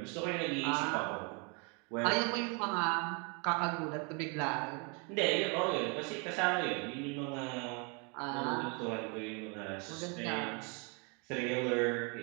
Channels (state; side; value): quieter; left; 34.0 dB